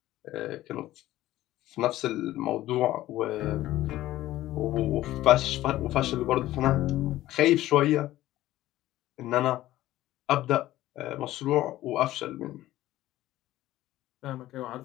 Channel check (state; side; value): quieter; right; 15.2 dB